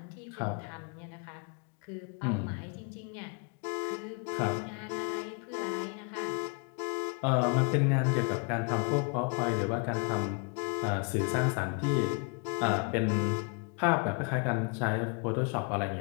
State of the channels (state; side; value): quieter; right; 36.3 dB